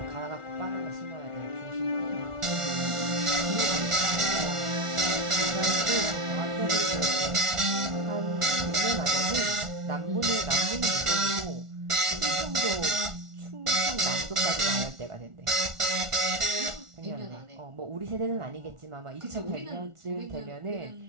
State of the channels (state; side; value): late; left; 1.4 ms